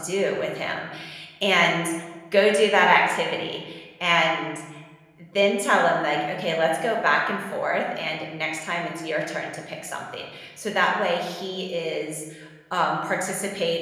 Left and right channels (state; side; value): identical; both; correlation 1.00